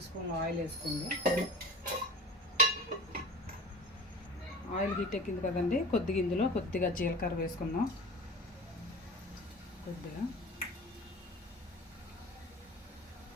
స్పూన్లు ఆయిల్ వేసుకుంది. ఆయిల్ హీట్ ఎక్కింది కదండి, ఇందులో కొద్దిగా జీలకర్ర వేసుకుందాం. కొద్దిగా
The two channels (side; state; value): both; normal; correlation 0.37